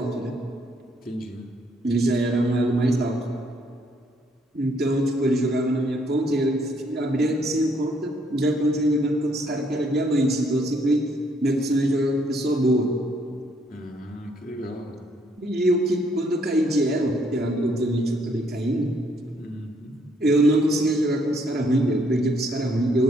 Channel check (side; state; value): both; normal; correlation 0.69